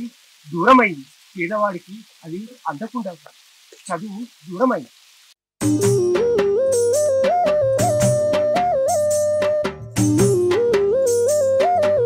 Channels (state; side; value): identical; both; correlation 1.00